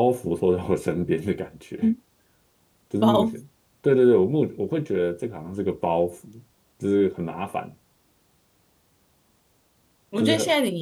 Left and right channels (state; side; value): identical; both; correlation 1.00